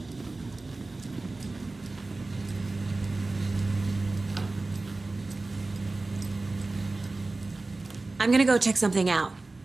I'm gonna go check something out.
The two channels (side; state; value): left; quieter; 3.3 dB